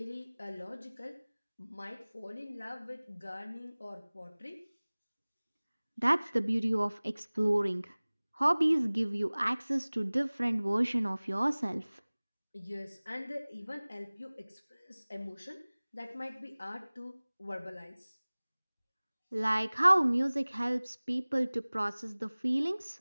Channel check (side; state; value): both; inverted; correlation -1.00